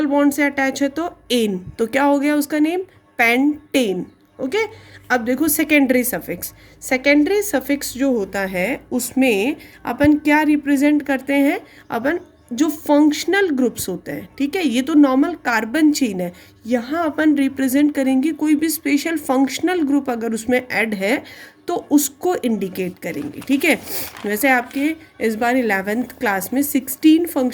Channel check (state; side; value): identical; both; correlation 1.00